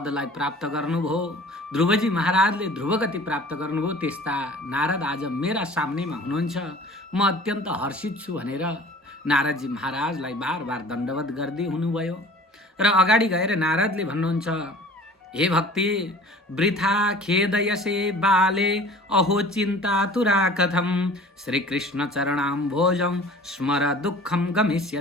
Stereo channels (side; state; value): both; normal; correlation 0.46